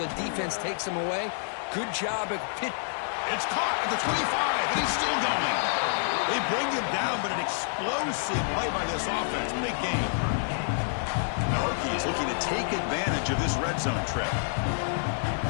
defense takes him away. Good job at pitch. It's caught at the 25, and he's still going. They bring him down, but an explosive play by this offense. Big game. The Hokies looking to take advantage of this red zone trip.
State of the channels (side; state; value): right; silent; digital silence